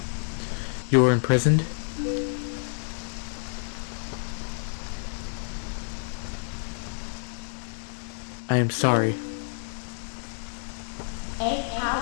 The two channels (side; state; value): right; silent; 59 dB below the other